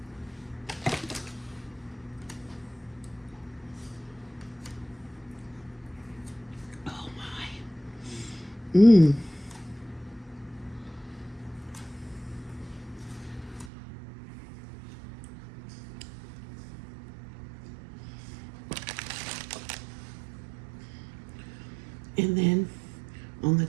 Oh my. And then on the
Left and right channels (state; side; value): drops out; left; at 13.7 s